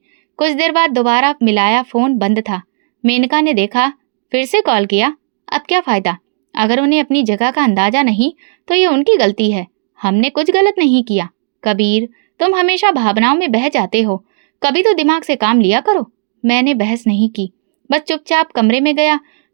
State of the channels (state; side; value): silent; left; digital silence